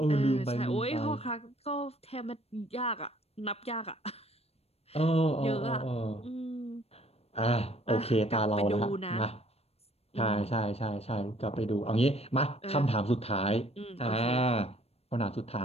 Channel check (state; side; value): late; right; 0.29 ms